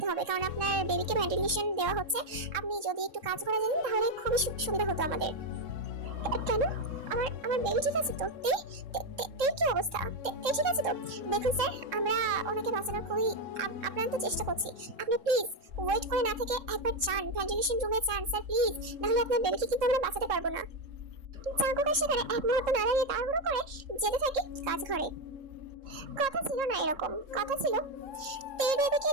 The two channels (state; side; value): late; left; 3.7 ms